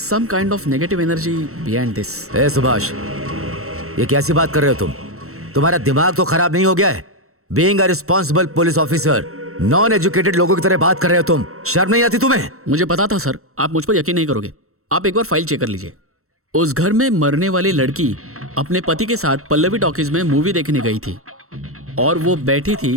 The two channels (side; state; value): left; late; 0.63 ms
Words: kind of negative energy behind this. ए सुभाष, ये कैसी बात कर रहे हो तुम? तुम्हारा दिमाग तो खराब नहीं हो गया है? Being a responsible police officer, non educated लोगों की तरह बात कर रहे हो तुम। शर्म नहीं आती तुम्हें? मुझे पता था सर, आप मुझ पर यकीन नहीं करोगे। आप एक बार फाइल चेक कर लीजिए। उस घर में मरने वाली लड़की अपने पति के साथ पल्लवी टॉकीज में मूवी देखने गई थी, और वो बैठी